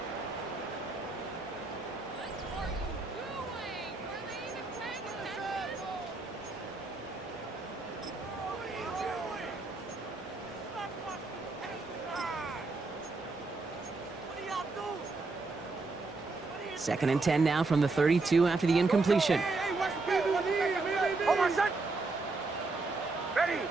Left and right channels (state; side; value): quieter; left; 3.7 dB